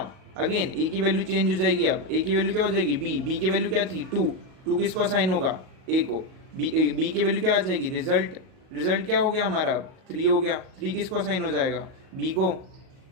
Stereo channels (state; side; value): late; left; 38 ms